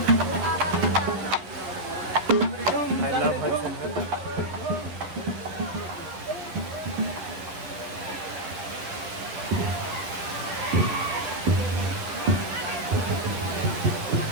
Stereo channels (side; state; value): left; late; 11 ms